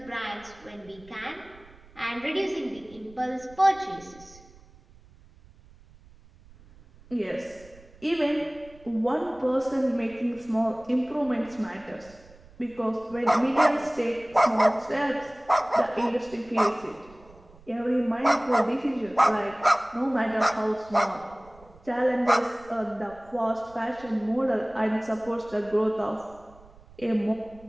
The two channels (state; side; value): noise; right; rumble, 24 dB below the sound